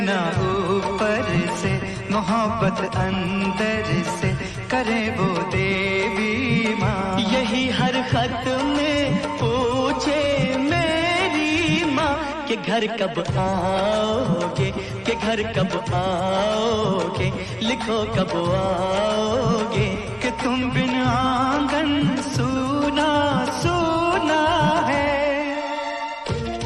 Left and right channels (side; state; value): both; identical; correlation 1.00